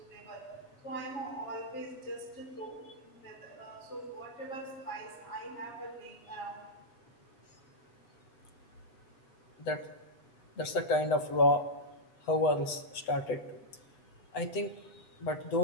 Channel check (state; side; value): late; right; 8.0 ms